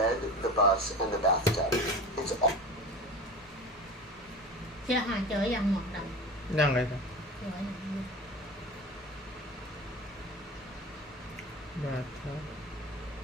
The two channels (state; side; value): normal; both; correlation 0.33